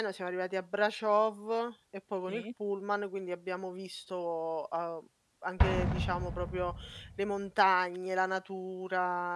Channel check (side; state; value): both; identical; correlation 1.00